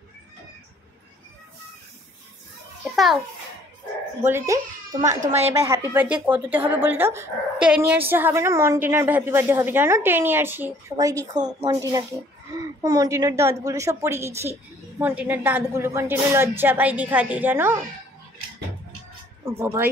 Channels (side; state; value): both; normal; correlation 0.58